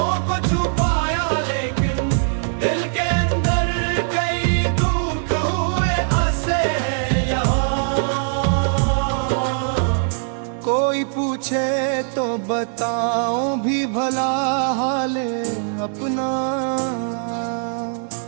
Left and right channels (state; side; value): silent; left; digital silence